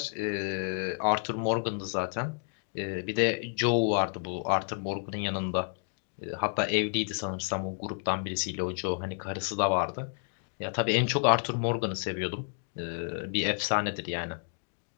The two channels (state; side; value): silent; right; 57 dB below the other